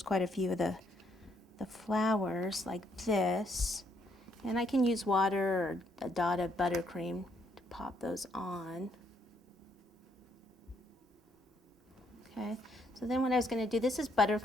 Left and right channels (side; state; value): both; normal; correlation 0.72